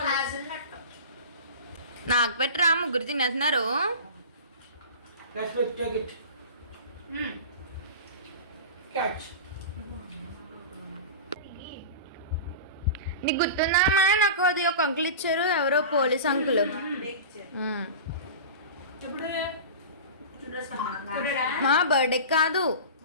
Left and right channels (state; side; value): inverted; both; correlation -0.32